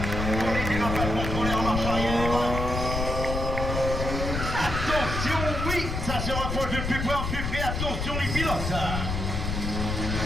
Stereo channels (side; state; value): left; noise; rumble, 3 dB below the sound